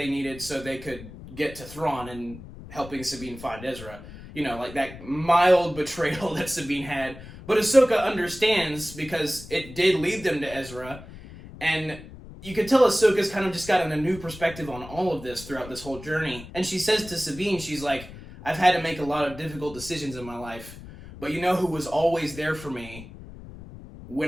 needed so they could get to Thrawn and helping Sabine find Ezra. like that mild betrayal that Sabine had. But Ahsoka understands because it did lead them to Ezra. And you can tell Ahsoka's kind of just gotten a new perspective on all of this throughout this whole journey. And she says to Sabine, she's like, I've had to make a lot of difficult decisions in my life. But you know who was always there for me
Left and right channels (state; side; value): noise; left; rumble, 15 dB below the sound